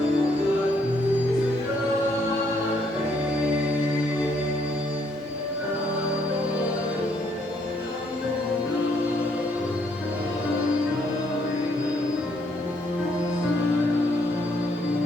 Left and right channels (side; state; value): both; normal; correlation 0.70